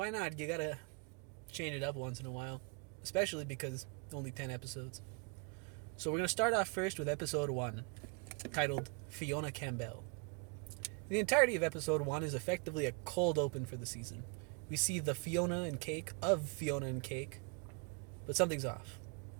not? You gotta change it up once in a while. Especially because only 10 episodes. So we're gonna start off first with episode 1, titled Fionna Campbell. The entirety of episode 1 is effectively a cold open for the season. We see the Fionna and Cake of Fionna and Cake, but something's off.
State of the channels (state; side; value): quieter; left; 33.5 dB